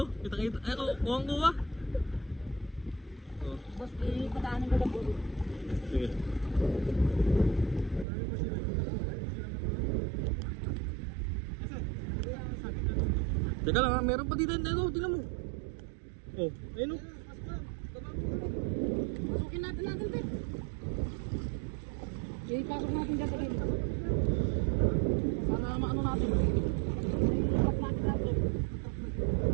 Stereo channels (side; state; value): left; drops out; at 8.1 s